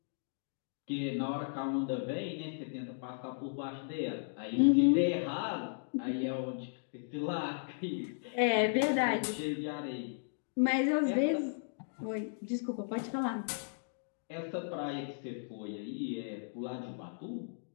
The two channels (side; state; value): right; silent; digital silence